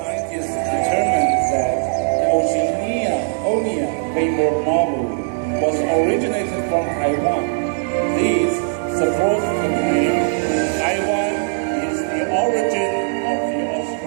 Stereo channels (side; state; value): left; silent; digital silence